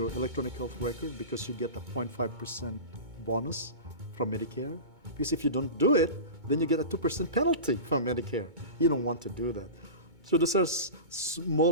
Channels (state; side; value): late; left; 2.2 ms